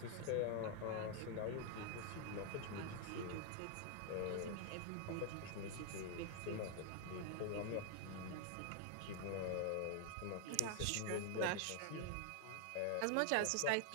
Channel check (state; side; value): different; both; correlation 0.00